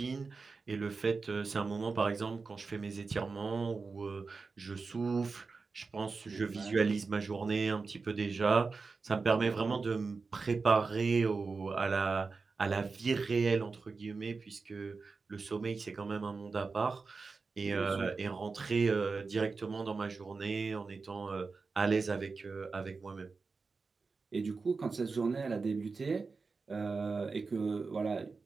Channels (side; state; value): left; quieter; 4.4 dB